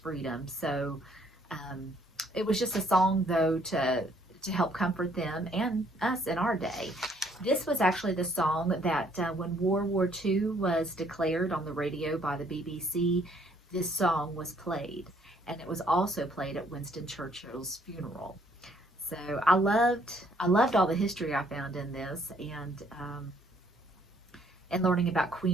So it was just a song, though, to help comfort them and us in our day. This was actually the song that when World War II was declared on the radio by the BBC, this song was played. And it was also played at Winston Churchill's funeral. So I loved all the history I found in this, and learning about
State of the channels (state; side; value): normal; both; correlation 0.65